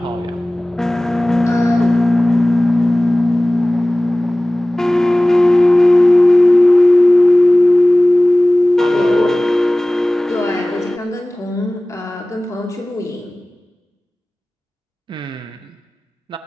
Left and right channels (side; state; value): both; normal; correlation 0.98